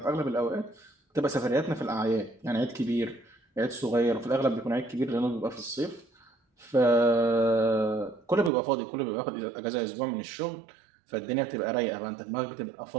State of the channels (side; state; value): left; drops out; at 8.5 s